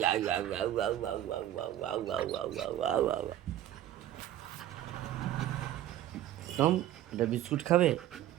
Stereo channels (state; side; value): quieter; left; 12.7 dB